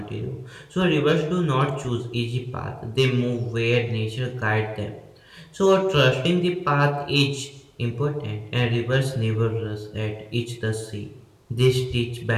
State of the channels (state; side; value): identical; both; correlation 1.00